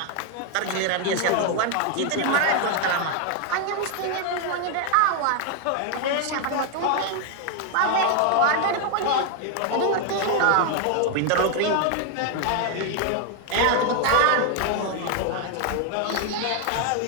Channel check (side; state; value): both; different; correlation 0.01